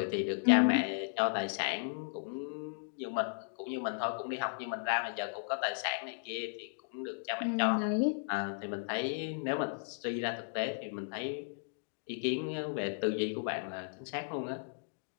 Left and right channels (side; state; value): right; silent; digital silence